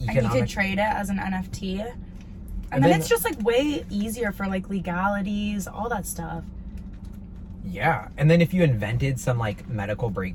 And you could trade it as an NFT. And then it's just like way easier for like legalities, all that stuff. Yeah, and then if you invented some like medical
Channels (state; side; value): identical; both; correlation 1.00